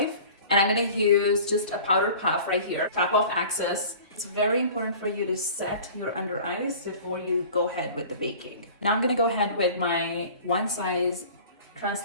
And I'm gonna use just a powder puff right here, tap off axis. It's very important for you to set your under eyes before you go ahead with the baking. Now I'm gonna go ahead with my one size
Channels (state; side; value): inverted; both; correlation -0.43